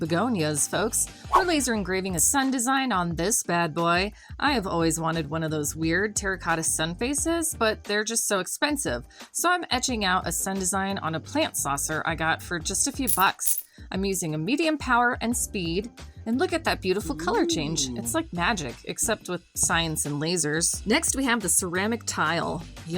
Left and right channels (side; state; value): both; identical; correlation 1.00